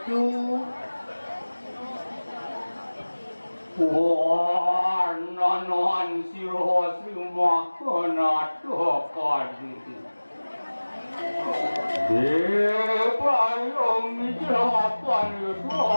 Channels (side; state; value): both; inverted; correlation -1.00